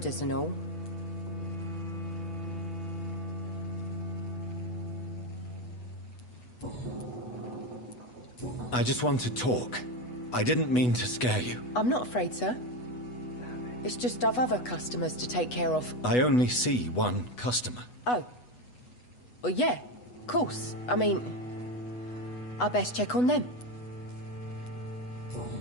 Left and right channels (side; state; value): right; late; 8.1 ms